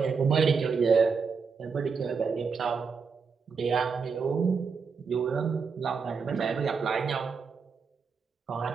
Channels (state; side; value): quieter; left; 5.5 dB